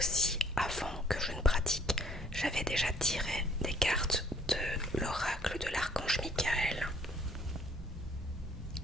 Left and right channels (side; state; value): both; normal; correlation 0.61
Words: avant que je ne pratique, j'avais déjà tiré des cartes de l'oracle de l'archange Michael.